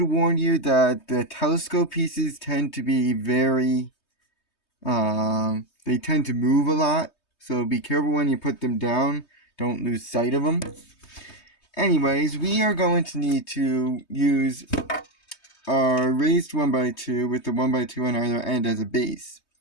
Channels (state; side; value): late; right; 3.2 ms